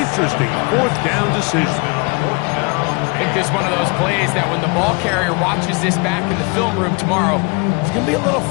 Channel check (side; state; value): right; quieter; 29.9 dB